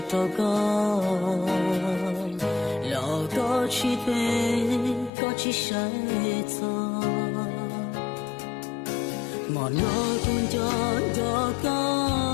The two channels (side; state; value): right; drops out; at 5.1 s